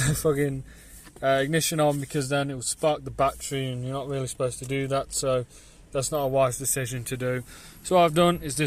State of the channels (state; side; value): identical; both; correlation 1.00